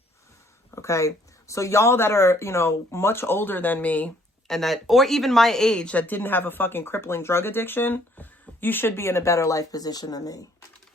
Okay? So, y'all that are, you know, much older than me, and that, or even my age, that didn't have a fucking crippling drug addiction, you should be in a better life position than me.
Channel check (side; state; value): both; normal; correlation 0.62